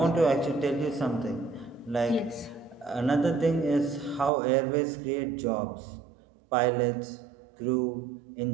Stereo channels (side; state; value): left; drops out; at 4.3 s